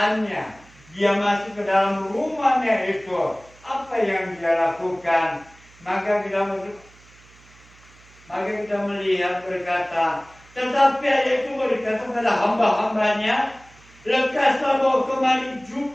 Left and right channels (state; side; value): noise; right; hum, 26 dB below the sound